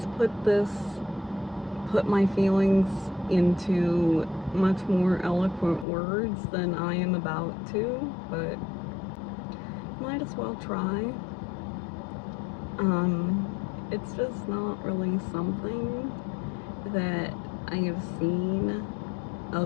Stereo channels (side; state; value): right; drops out; at 5.9 s